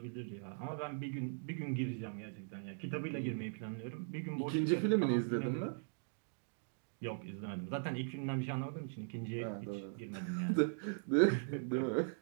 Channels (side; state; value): left; silent; digital silence